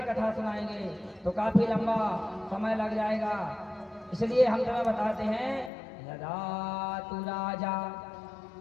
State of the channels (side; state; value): right; drops out; at 5.7 s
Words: कथा सुनाएंगे तो काफी लंबा समय लग जाएगा, इसलिए हम तुम्हें बताते हैं। यदा तु राजा